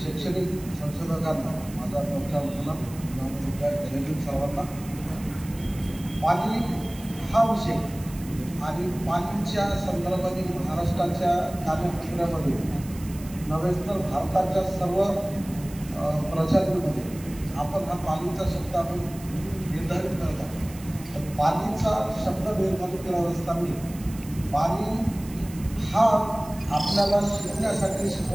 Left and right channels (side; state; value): right; noise; hiss, 18 dB below the sound